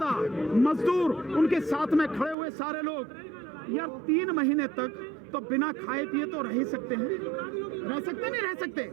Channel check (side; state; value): left; drops out; at 2.4 s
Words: मजदूर, उनके साथ में खड़े हुए सारे लोग, यार 3 महीने तक तो बिना खाए पिए तो रह ही सकते हैं, रह सकते नहीं रह सकते?